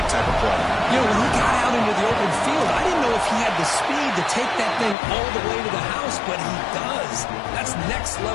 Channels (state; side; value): drops out; right; at 5.0 s